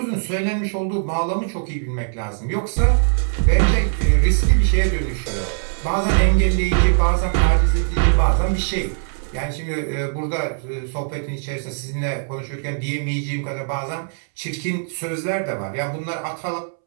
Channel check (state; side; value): silent; left; 65 dB below the other